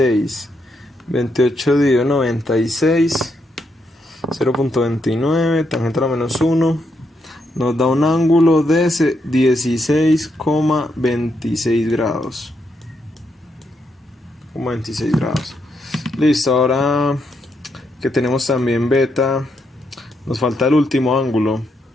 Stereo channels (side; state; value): both; normal; correlation 0.79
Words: 28 dividido 96. 0.29, tangente a la menos 1. Nos da un ángulo de 16,26 grados. 26 grados. Listo, ahora que tenemos también beta, nos falta el último ángulo,